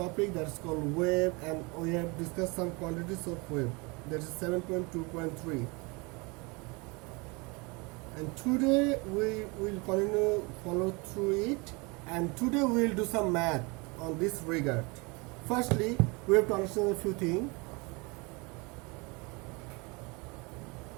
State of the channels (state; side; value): quieter; left; 27.7 dB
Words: that is called wave, and we have discussed some quantities of wave. That is 7.2.3. And today we will continue follow through it, and today we will do some math on this regard. Firstly, we have to understand a few things.